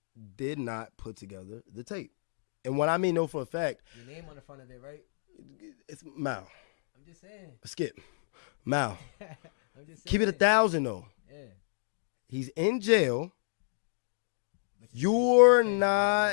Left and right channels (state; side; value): silent; right; digital silence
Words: did not put together the tape, and what I mean know for a fact, your name on the front of it, right? it's Mal. I'm just saying. Skip, Mal. I'm just saying. Keep it 1,000 though. Yeah. He's in jail. You're You're